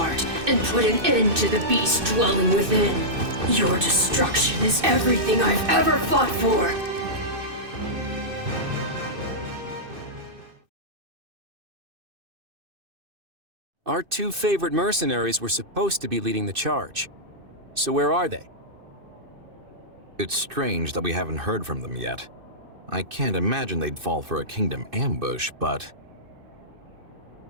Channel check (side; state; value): left; late; 2.6 ms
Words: and put an end to the beast dwelling within. Your destruction is everything I've ever fought for. Our two favorite mercenaries were supposed to be leading the charge. So where are they? It's strange that we haven't heard from them yet. I can't imagine they'd fall for a kingdom ambush, but...